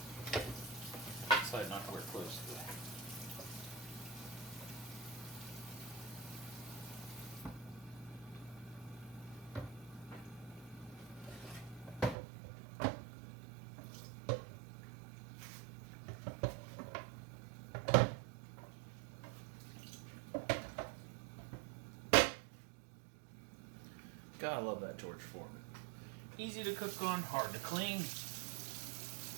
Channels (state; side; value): drops out; left; at 12.2 s